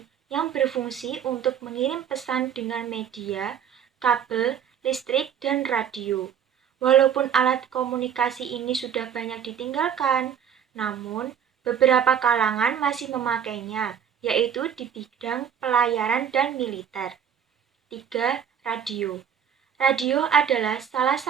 yang berfungsi untuk mengirim pesan dengan media, kabel, listrik, dan radio. Walaupun alat komunikasi ini sudah banyak ditinggalkan, namun beberapa kalangan masih memakainya, yaitu di bidang pelayaran dan militer. 3. Radio. Radio adalah salah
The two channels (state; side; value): quieter; left; 8.3 dB